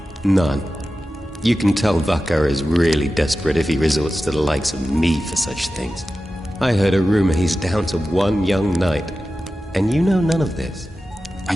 None. You can tell Vakar is really desperate if he resorts to the likes of me for such things. I heard a rumor he's down to 1 young knight, and you know none of this. I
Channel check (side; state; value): both; normal; correlation 0.93